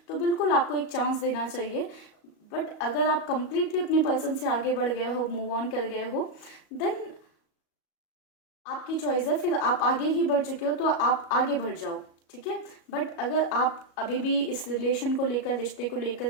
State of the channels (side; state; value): right; late; 37 ms